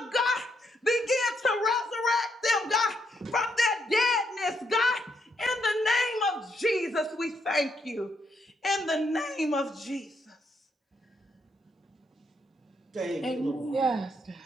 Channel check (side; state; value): both; normal; correlation 0.77